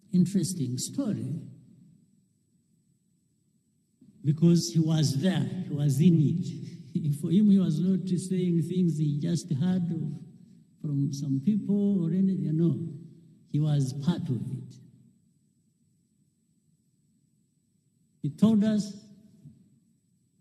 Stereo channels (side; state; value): both; identical; correlation 1.00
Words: interesting story, because he was there, he was in it. For him, he was not saying things he just heard from some people or anything. No, he was part of it. He told us